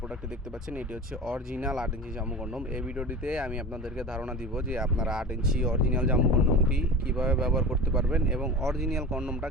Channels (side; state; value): both; normal; correlation 0.33